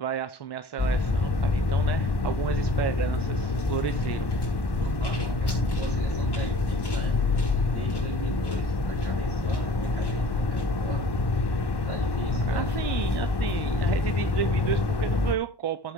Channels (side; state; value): right; late; 1.1 ms